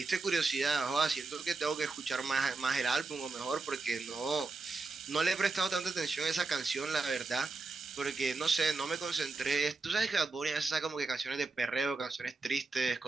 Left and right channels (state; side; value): quieter; left; 3.8 dB